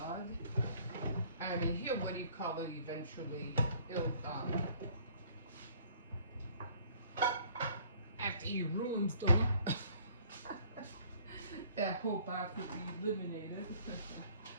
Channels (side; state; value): both; inverted; correlation -0.57